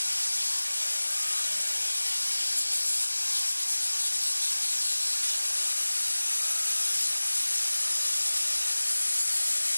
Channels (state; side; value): inverted; both; correlation -1.00